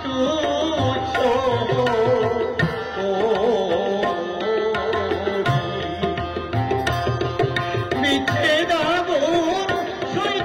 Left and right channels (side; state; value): both; identical; correlation 1.00